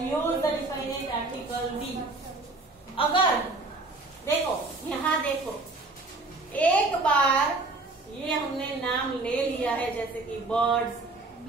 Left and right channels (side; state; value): left; quieter; 3.3 dB